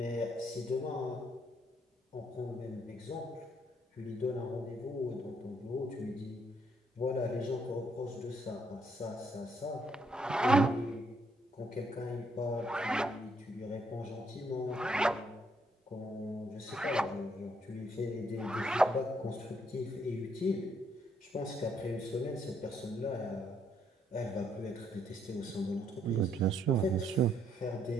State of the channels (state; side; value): normal; both; correlation 0.72